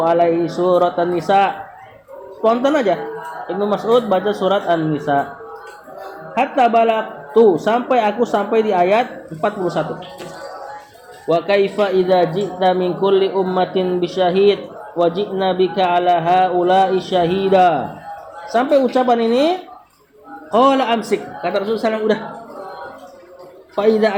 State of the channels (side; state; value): both; identical; correlation 1.00